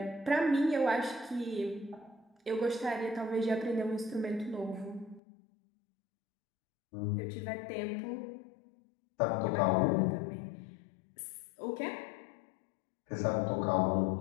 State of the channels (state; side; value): drops out; right; at 5.2 s